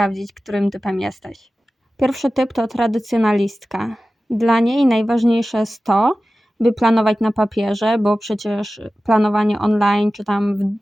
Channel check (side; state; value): both; normal; correlation 0.95